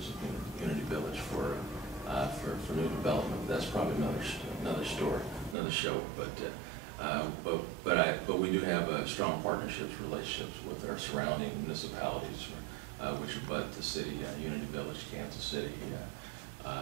of Unity Village for new development. That's probably another story, another show. But we do have strong relationships with our surrounding municipalities, which abut the city, Unity Village, Kansas City,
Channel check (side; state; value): left; drops out; at 5.6 s